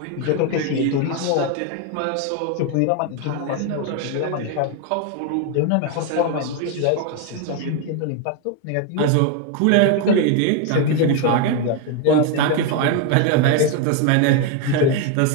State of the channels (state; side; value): different; both; correlation 0.01